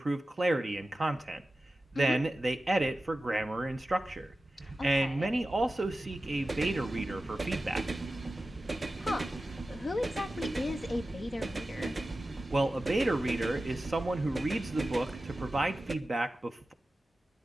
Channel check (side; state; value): both; normal; correlation 0.95